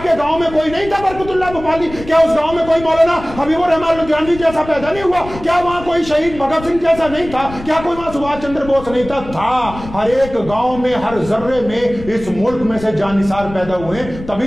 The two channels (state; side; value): noise; left; rumble, 14 dB below the sound